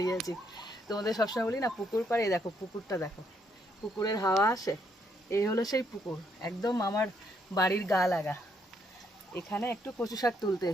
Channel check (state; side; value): normal; both; correlation 0.73